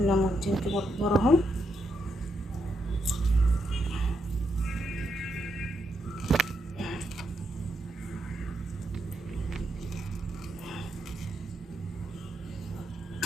كده كبار اهو.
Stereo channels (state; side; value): normal; both; correlation 0.80